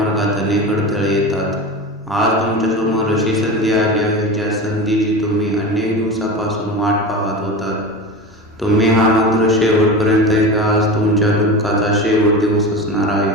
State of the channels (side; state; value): both; normal; correlation 0.27